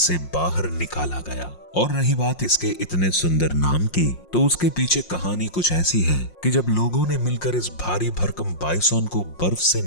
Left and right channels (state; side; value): late; right; 5.6 ms